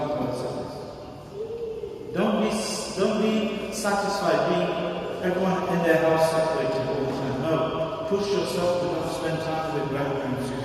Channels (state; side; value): identical; both; correlation 1.00